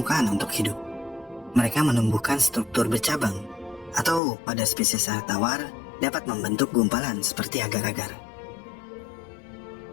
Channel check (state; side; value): drops out; right; at 4.2 s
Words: untuk hidup. Mereka menumbuhkan struktur bercabang, atau pada spesies air tawar dapat membentuk gumpalan seperti agar-agar.